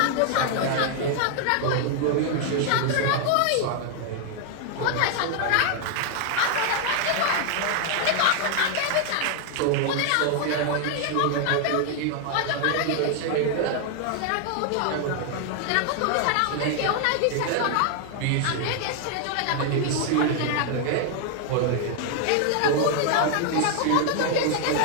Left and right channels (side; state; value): both; different; correlation 0.00